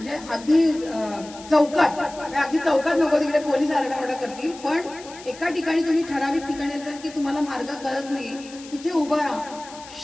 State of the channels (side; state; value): left; noise; hiss, 18 dB below the sound